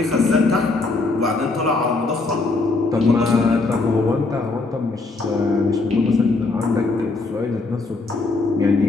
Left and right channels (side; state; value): right; quieter; 3.6 dB